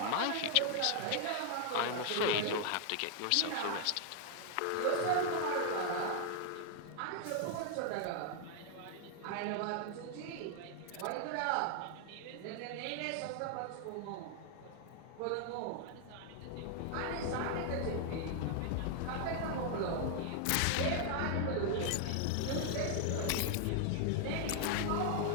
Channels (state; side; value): different; both; correlation 0.00